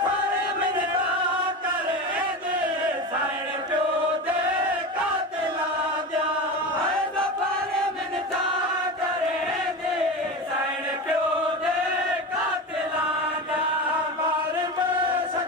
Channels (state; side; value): normal; both; correlation 0.25